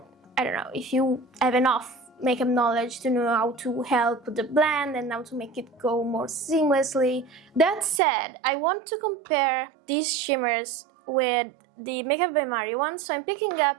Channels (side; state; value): left; drops out; at 8.0 s